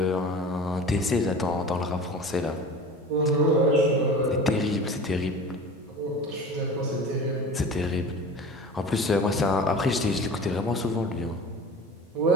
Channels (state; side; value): normal; both; correlation 0.37